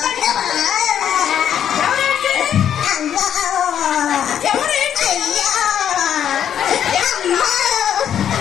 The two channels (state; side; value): quieter; right; 9.4 dB